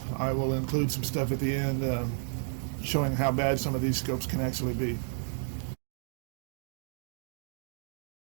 I will include some stuff at the end showing how bad some of these scopes can actually be.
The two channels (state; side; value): silent; left; 56 dB below the other